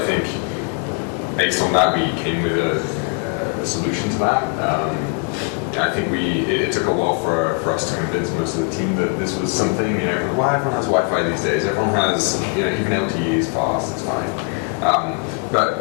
think based on that, we came with a solution to that. I think it took a while for us to convince most of the team that this was something, well, everyone has Wi-Fi these days, everyone has, even LTE is fast, it's fine.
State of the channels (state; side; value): quieter; right; 34.2 dB